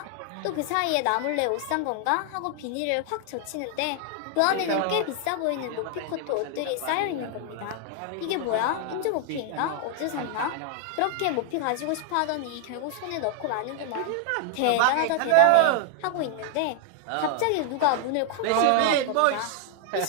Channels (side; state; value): both; different; correlation 0.00